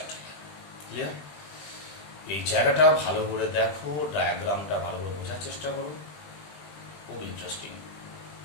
ক্লিয়ার? এই জায়গাটা ভালো করে দেখো, ডায়াগ্রামটা ভালো করে বোঝার চেষ্টা করো। খুব ইন্টারেস্টিং।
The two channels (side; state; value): right; late; 20 ms